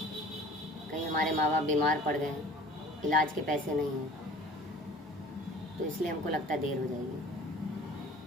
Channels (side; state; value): both; normal; correlation 0.46